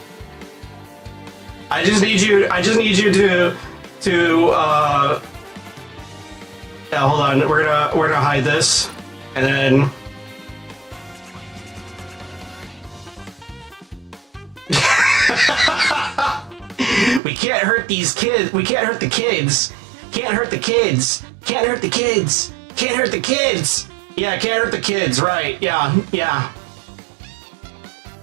I just need you to yeah, hold on, we're gonna hide this, and then we can't hurt these kids. We can't hurt the kids. Can't hurt the kids. Can't hurt the kids. Can't hurt the kids. Yeah, can't hurt the kids. Right. Yeah. Yeah.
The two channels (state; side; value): drops out; left; at 17.2 s